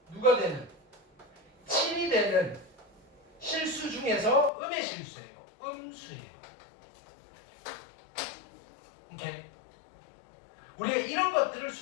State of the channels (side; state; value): right; drops out; at 4.5 s